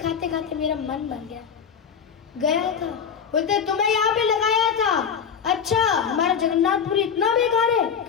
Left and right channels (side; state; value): right; quieter; 7.1 dB